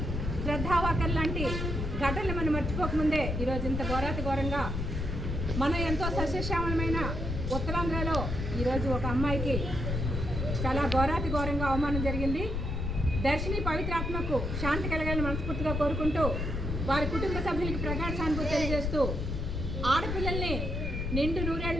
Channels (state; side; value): noise; left; rumble, 2 dB below the sound